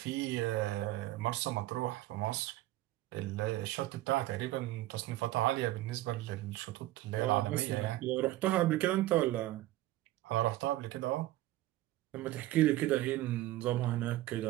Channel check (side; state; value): left; quieter; 16.0 dB